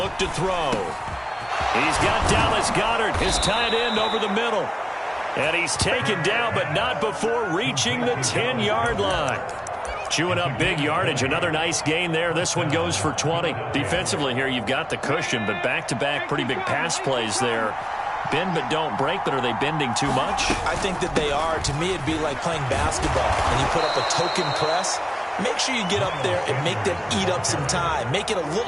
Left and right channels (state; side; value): identical; both; correlation 1.00